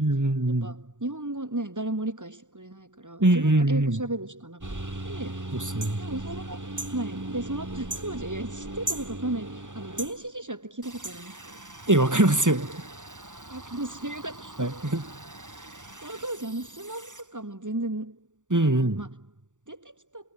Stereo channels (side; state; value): left; late; 0.86 ms